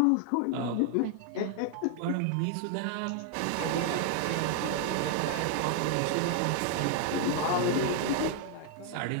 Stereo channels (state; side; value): different; both; correlation 0.00